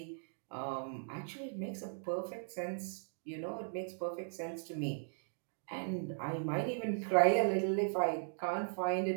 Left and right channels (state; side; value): silent; left; digital silence